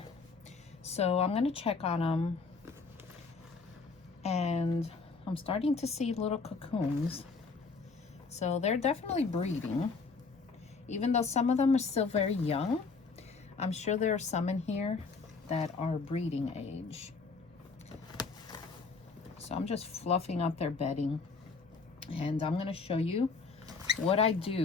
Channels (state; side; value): quieter; right; 4.5 dB